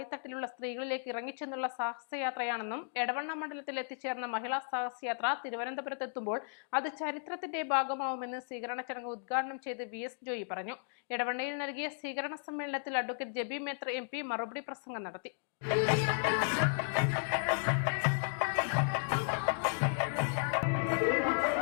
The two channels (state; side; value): silent; right; digital silence